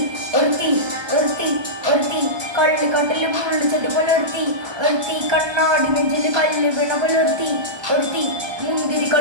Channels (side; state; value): left; late; 1.2 ms